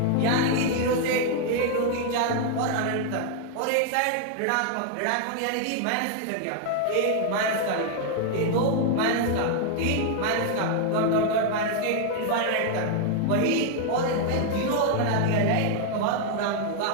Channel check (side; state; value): both; different; correlation 0.00